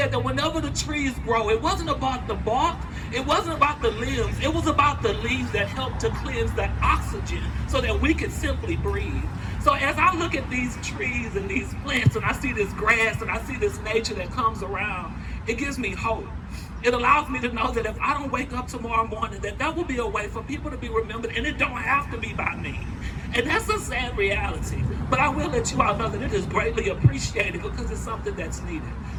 that whenever the trees grow, it wasn't about the bark, it wasn't about the limbs, it was about the leaves that helped to cleanse the oxygen so that we could simply breathe. So as I look at these trees and these plants and I see this grass and I see this nature that comes around, it gives me hope. It allows me to know that if I don't wake up tomorrow morning, that will be a way for people to be remembered, and it don't have to be by me. And that's a sad reality. But I will let you all know that it is greatly appreciated because it's something that's needed.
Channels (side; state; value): both; identical; correlation 1.00